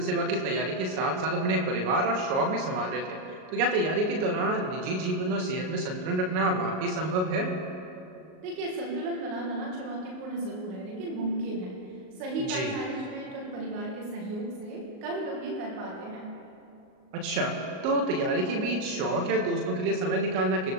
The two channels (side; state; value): left; late; 38 ms